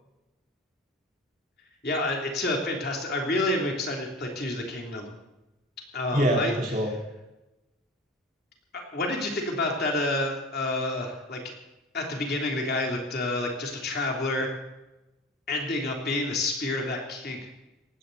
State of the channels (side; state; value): both; normal; correlation 0.34